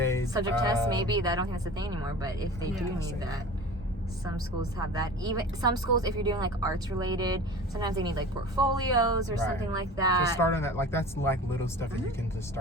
Subject test, maybe. I don't think that's a thing anymore, but if they do need say that, some schools have that. Even some schools, if you're doing like arts related, sometimes they need like portfolios or something like that. So start on that. Like that's like little stuff that you can just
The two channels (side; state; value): both; normal; correlation 0.38